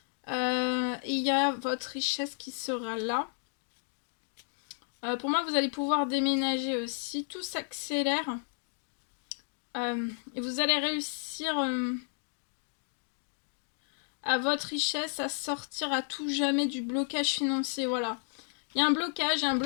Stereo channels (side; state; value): right; silent; 56 dB below the other